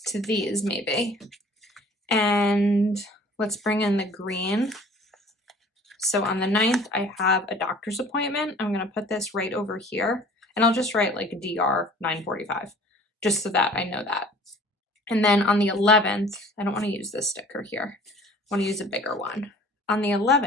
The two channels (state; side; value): normal; both; correlation 0.49